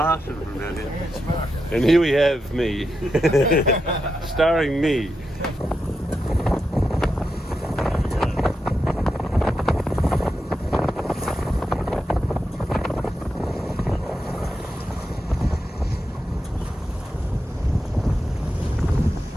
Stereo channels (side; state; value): both; normal; correlation 0.87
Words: from down here. Yeah, it's smart. And here we have me, starring me.